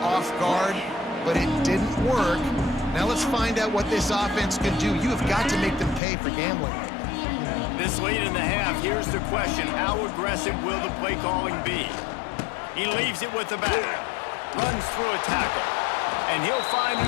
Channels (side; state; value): right; drops out; at 6.0 s